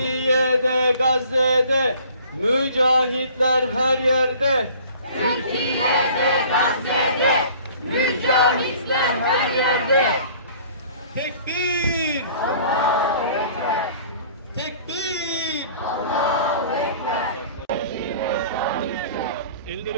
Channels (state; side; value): inverted; both; correlation -0.50